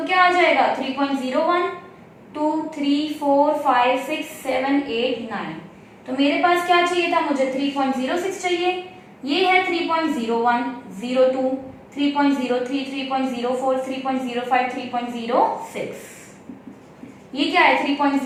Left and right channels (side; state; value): both; identical; correlation 1.00